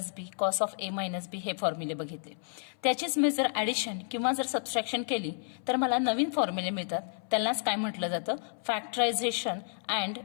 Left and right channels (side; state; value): right; silent; 57 dB below the other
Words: B, cos of A minus B हे फॉर्म्युले बघितले. त्याचीच मी जर ॲडिशन किंवा जर सबस्ट्रॅक्शन केली तर मला नवीन फॉर्म्युले मिळतात. त्यांनाच काय म्हटलं जातं? फॅक्टरायझेशन अँड